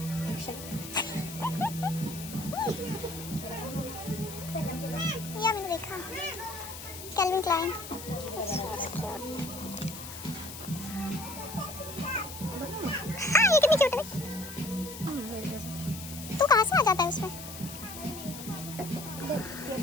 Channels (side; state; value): left; noise; hiss, 11 dB below the sound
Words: या मैंने देखा कैल्विन क्लाइन. हाँ ये कितनी क्यूट है. तू कहाँ से आ जाता है उसमें.